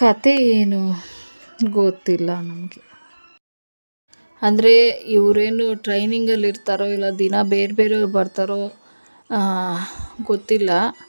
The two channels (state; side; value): inverted; both; correlation -1.00